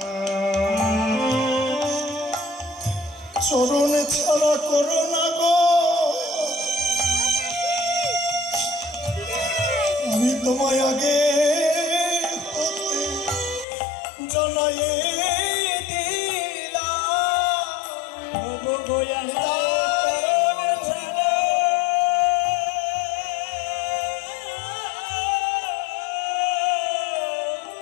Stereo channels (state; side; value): drops out; right; at 13.7 s